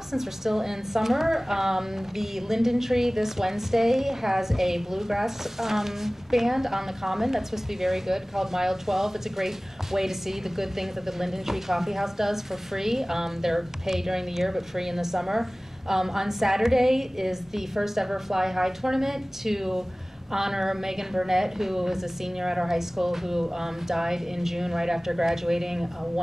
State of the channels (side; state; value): both; normal; correlation 0.98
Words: since we're still in summer, the Linden Tree this Wednesday has a bluegrass band on the Common that's supposed to be very good, called Mile 12. It's a great way to see the good things that the Linden Tree Coffee House does for free. They're paid during the year, but free in the summer. On Saturday is the first ever Fly High tournament to honor Megan Burnett, who is a senior at our high school, who died in June right after graduating, a